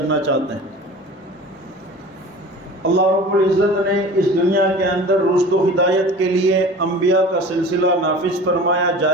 چاہتے ہیں۔ اللہ رب العزت نے اس دنیا کے اندر رشد و ہدایت کے لیے انبیاء کا سلسلہ نافذ فرمایا،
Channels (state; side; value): normal; both; correlation 0.39